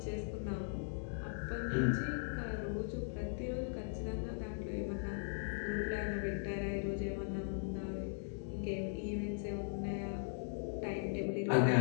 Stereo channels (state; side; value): silent; right; digital silence